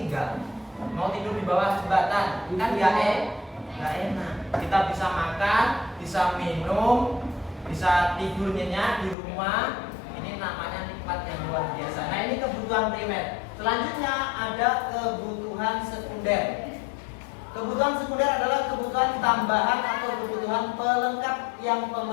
Mau tidur di bawah jembatan kan nggak enak. Kita bisa makan, bisa minum, bisa tidur nyenyak di rumah. Ini namanya nikmat yang luar biasa. Nah, ini kebutuhan primer. Selanjutnya ada kebutuhan sekunder. Kebutuhan sekunder adalah kebutuhan tambahan atau kebutuhan pelengkap yang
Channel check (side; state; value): right; drops out; at 9.2 s